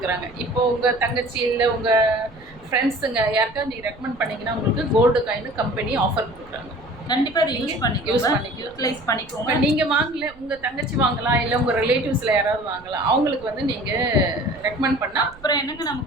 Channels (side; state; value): right; noise; rumble, 24 dB below the sound